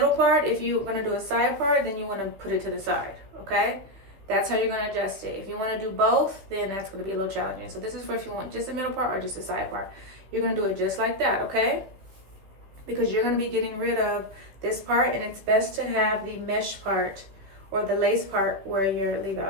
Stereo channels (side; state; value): left; late; 15 ms